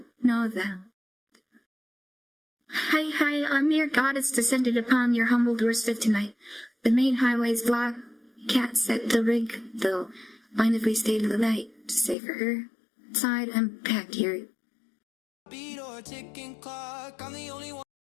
know them. Hi, I'm your goddess descended upon your humble doorstep tonight. The main highway's blocked. Cat set the rig, though. Mind if we stay to the night to save for her? Inside, I'm packed here.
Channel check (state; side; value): drops out; right; at 12.2 s